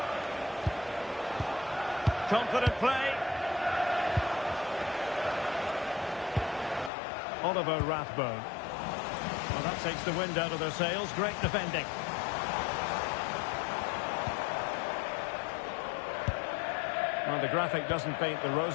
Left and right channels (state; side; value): drops out; right; at 6.9 s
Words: Confident play. Oliver Rathbone. Well, that takes the wind out of their sails. Great defending. Well, the graphic doesn't paint the